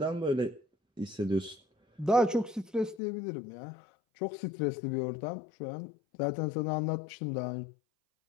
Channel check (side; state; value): right; drops out; at 3.0 s